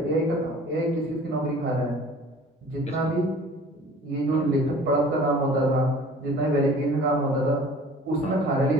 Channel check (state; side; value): normal; both; correlation 0.47